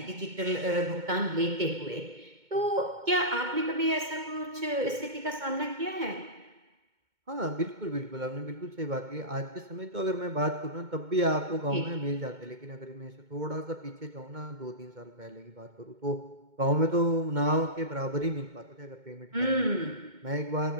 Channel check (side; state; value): left; late; 2.2 ms